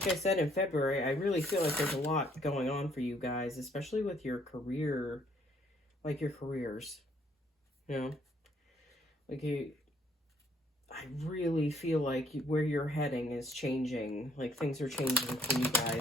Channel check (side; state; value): both; normal; correlation 0.65